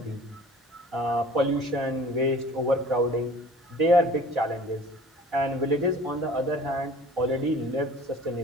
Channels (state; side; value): normal; both; correlation 0.46